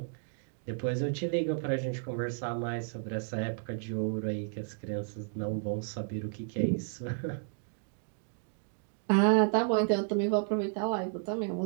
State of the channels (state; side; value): silent; left; digital silence